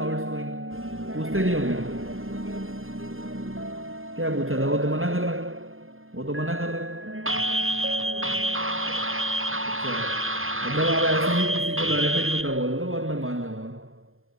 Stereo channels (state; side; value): late; left; 0.60 ms